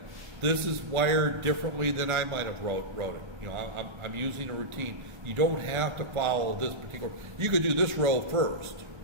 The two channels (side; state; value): left; late; 1.4 ms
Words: this is wired differently than I might have wrote it. I'm using a routine. You don't have to follow this particular. You could do this row first,